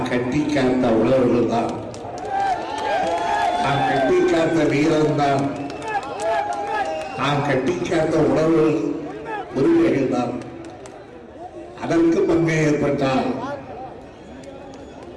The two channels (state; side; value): identical; both; correlation 1.00